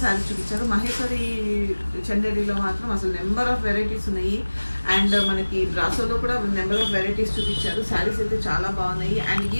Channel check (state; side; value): inverted; both; correlation -1.00